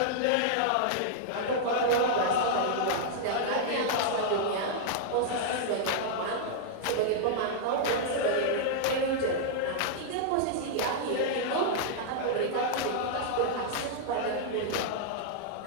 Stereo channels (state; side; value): different; both; correlation -0.01